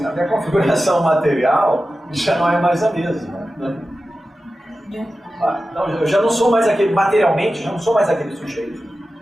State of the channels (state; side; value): normal; both; correlation 0.94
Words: a minha configuração material já não é mais a mesma. Né? Então, eu já não sou mais aquele, materialmente, já não sou mais aquele sujeito